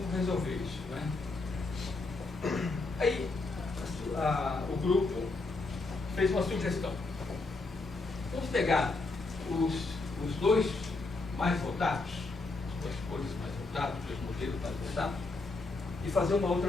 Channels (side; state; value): right; quieter; 3.5 dB